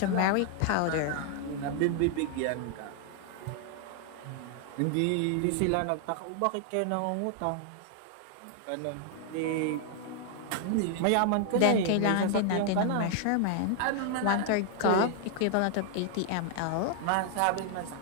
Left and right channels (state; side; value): different; both; correlation 0.00